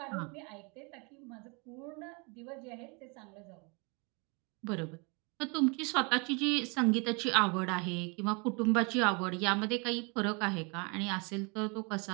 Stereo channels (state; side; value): quieter; left; 31.9 dB